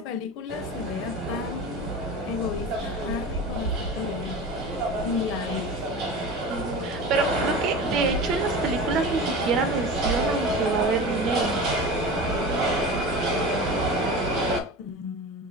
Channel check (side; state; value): both; normal; correlation 0.31